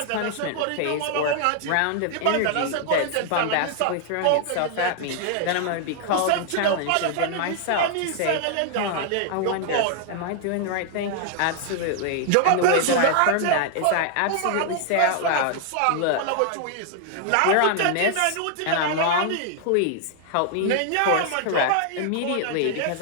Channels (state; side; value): different; both; correlation 0.00